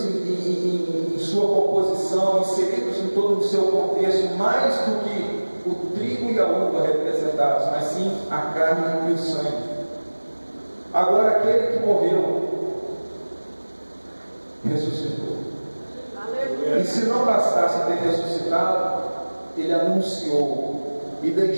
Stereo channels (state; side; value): inverted; both; correlation -1.00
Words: em sua composição, inseridos em todo o seu contexto, mais do que o trigo e a uva representados, mas sim a carne e o sangue. Agora, aquele que morreu ressuscitou. E se não bastasse ter ressuscitado, ele anunciou e